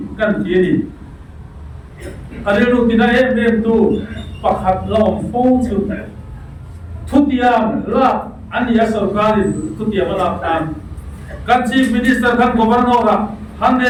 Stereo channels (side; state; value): both; identical; correlation 1.00